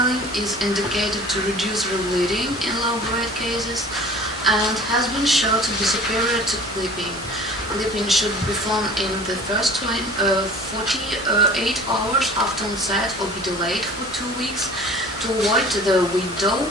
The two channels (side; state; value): both; normal; correlation 0.45